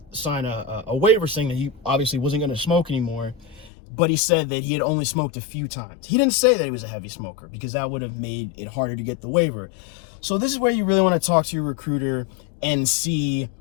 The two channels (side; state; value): right; drops out; at 3.7 s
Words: sign a waiver saying that he obviously wasn't going to smoke anymore, but he said that he had only smoked a few times. He didn't say that he was a heavy smoker, because that would have made it harder to get the waiver. So this is where you really want to talk to your recruiter and see,